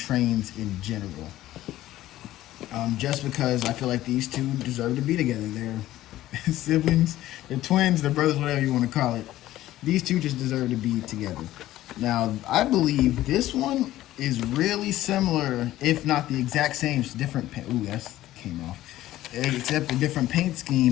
in general. Just because I feel like these two deserve to be together. They're siblings, they're twins, they're brothers, whatever you want to call it. These two just deserve to be together. Now, I believe this one is really similar, if not the exact same. It's different paint. Ooh, that came off. Except a different paint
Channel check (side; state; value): right; quieter; 14.8 dB